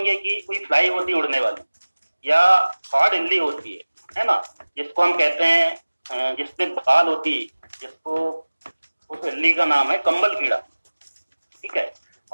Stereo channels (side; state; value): both; inverted; correlation -1.00